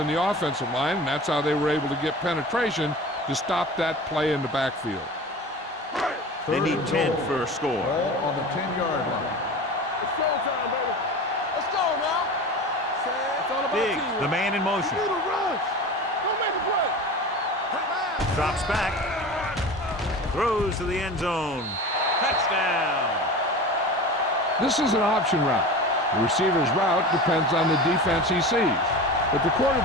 the offensive line, and that's how they were able to get penetration to stop that play in the backfield. They need 10 for a score. Ball on the 10-yard line. It's showtime, baby. Let's go now. It's all about Diggs, teamwork. the man in motion. You need to rush. Don't make a play. Drops back. Throws to the end zone. Touchdown. This is an option route. The receiver's route depends on the defense he sees, but the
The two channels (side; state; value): both; normal; correlation 0.33